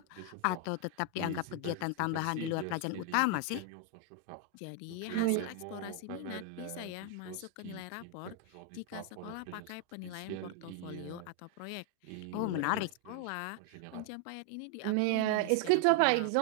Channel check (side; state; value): both; different; correlation 0.00